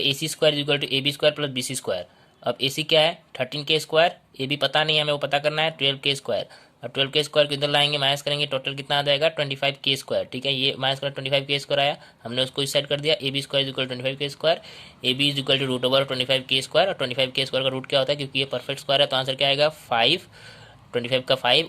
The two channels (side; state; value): both; identical; correlation 1.00